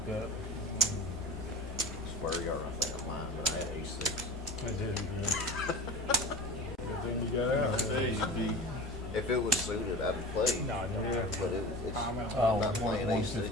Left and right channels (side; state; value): both; normal; correlation 0.35